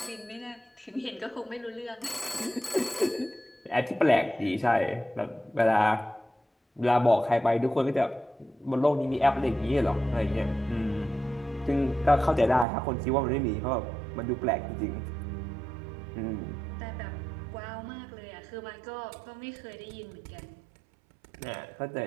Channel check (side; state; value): left; drops out; at 12.7 s